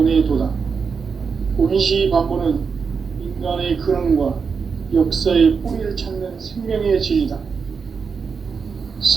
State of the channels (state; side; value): quieter; left; 5.6 dB